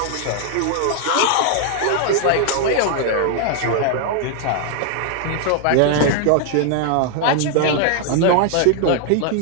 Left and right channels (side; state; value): both; different; correlation 0.00